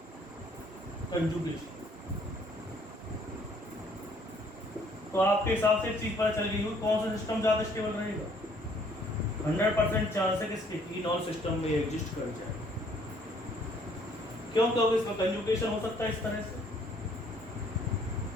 कंजुगेशन। तो आपके हिसाब से एक चीज पता चल गई हुई, कौन सा सिस्टम ज्यादा स्टेबल रहेगा, 100% चांस है किसके, इनॉल सिस्टम में एग्जिस्ट कर जाए। क्यों, क्योंकि इसमें कंजुगेशन हो सकता है इस तरह से,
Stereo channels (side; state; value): both; normal; correlation 0.62